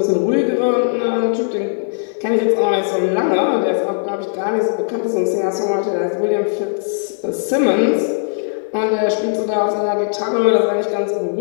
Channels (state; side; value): silent; right; 67 dB below the other